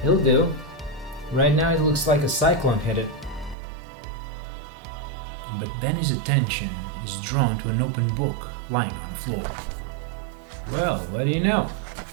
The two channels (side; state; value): left; drops out; at 3.6 s